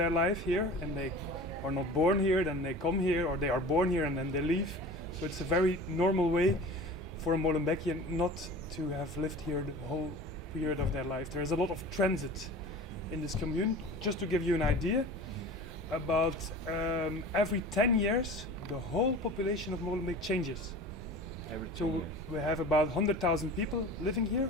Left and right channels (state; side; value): normal; both; correlation 0.38